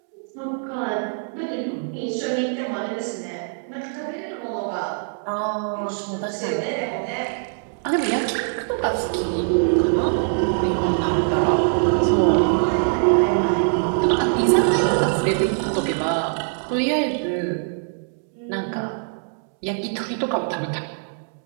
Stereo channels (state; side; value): silent; left; 63 dB below the other